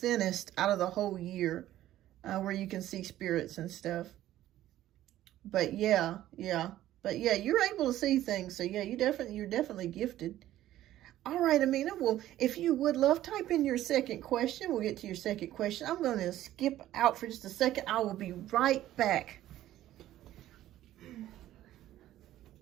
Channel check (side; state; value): left; quieter; 13.6 dB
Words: out of the whole year, where you can see spirits and stuff. But yeah. But yeah, you're able to see things. So yeah, you're definitely gifted. All right, Amina. Well, if you would love, type in your second question. We'll get to your second question. I'm going to skip out for just a second. I will be right back.